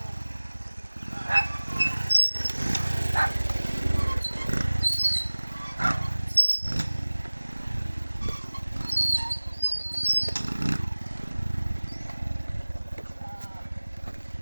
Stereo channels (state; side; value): inverted; both; correlation -1.00